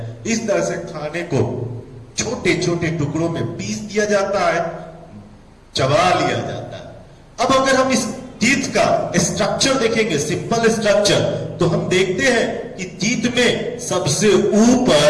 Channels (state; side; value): identical; both; correlation 1.00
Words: इस तरह से खाने को छोटे छोटे टुकड़ों में पीस दिया जाता है, चबा लिया जाता है। अब अगर हम इस टीथ का स्ट्रक्चर देखेंगे, सिंपल स्ट्रक्चर, तो हम देखते हैं कि टीथ में सबसे